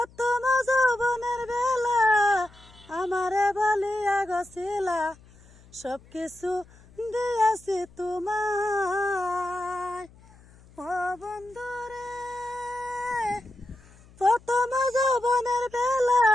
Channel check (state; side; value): noise; left; hum, 25 dB below the sound